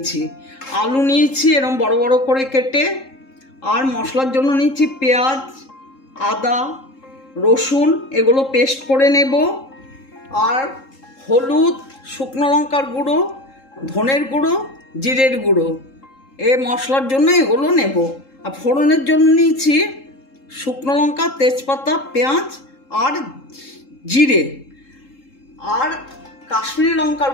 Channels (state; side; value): late; right; 3.7 ms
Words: আলু নিয়েছি এরকম বড় বড় করে কেটে। আর মশলার জন্য নিচ্ছি পেঁয়াজ, আদা, রসুন, এগুলো পেস্ট করে নেব। আর হলুদ, শুকনো লঙ্কার গুঁড়ো, ধনের গুঁড়ো, জিরের গুঁড়ো, এই মশলার জন্য এগুলো নেব। আর ফোড়নের জন্য নিয়েছি শুকনো লঙ্কা, তেজপাতা, পেঁয়াজ আর জিরে আর কাশ্মীরি লঙ্কার